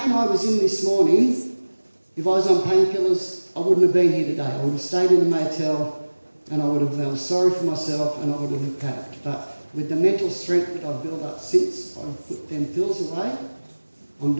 I was in this morning, if I was on painkillers, I wouldn't have been here today. I would have stayed in a motel and I would have felt sorry for myself and I would have coped. But with the mental strength that I've built up since I've put them pills away, I'm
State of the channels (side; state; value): both; inverted; correlation -1.00